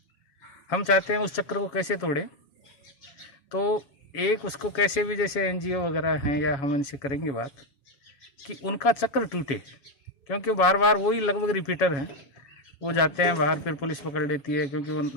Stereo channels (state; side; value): late; right; 7.2 ms